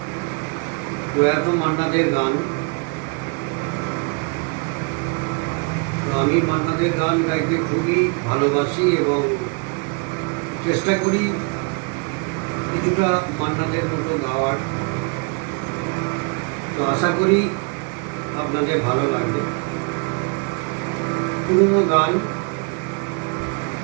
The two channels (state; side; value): quieter; left; 33.6 dB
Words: প্রয়াত মান্নাদের গান। তো আমি মান্নাদের গান গাইতে খুবই ভালোবাসি এবং চেষ্টা করি কিছুটা মান্নাদের মতো গাওয়ার। তো আশা করি আপনাদের ভালো লাগবে। পুরনো গান